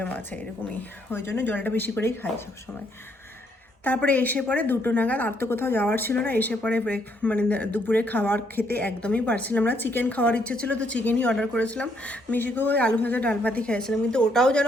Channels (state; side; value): normal; both; correlation 0.72